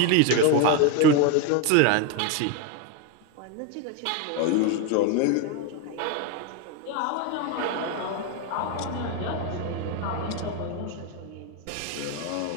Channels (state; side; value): different; both; correlation 0.02